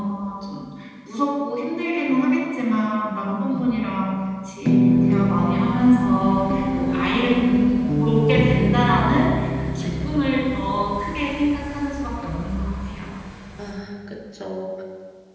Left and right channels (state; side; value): identical; both; correlation 1.00